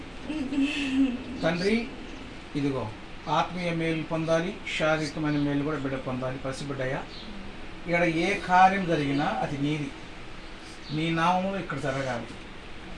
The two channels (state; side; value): identical; both; correlation 1.00